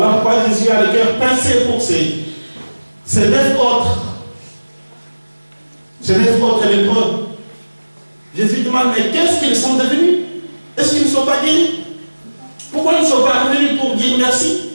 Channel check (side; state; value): both; inverted; correlation -1.00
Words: pourquoi Jésus a le cœur pincé pour ces 9 autres. Ces 9 autres lépreux. Jésus demande, mais qu'est-ce qu'ils sont devenus? Est-ce qu'ils ne sont pas guéris? Pourquoi ils ne sont pas revenus pour dire merci?